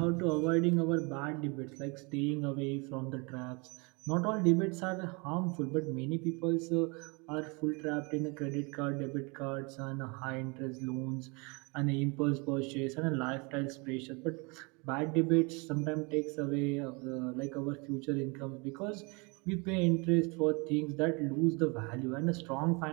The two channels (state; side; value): quieter; left; 29.9 dB